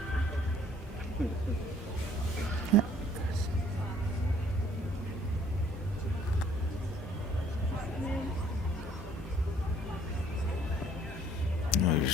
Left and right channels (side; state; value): both; normal; correlation 0.60